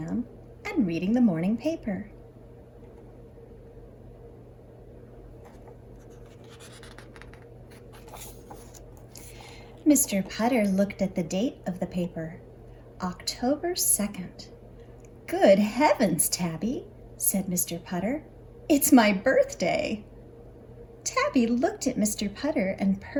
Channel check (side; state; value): both; identical; correlation 1.00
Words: and reading the morning paper. Mr. Putter looked at the date of the paper, October 2nd. Good heavens, Tabby, said Mr. Putter. It's my birthday. Tabby looked at Mr. Putter and